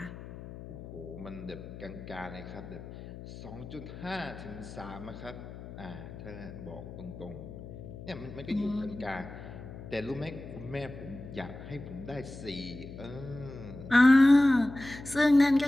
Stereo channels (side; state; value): left; noise; hum, 13 dB below the sound